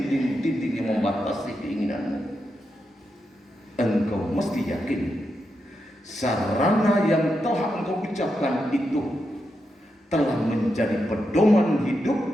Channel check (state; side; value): normal; both; correlation 0.86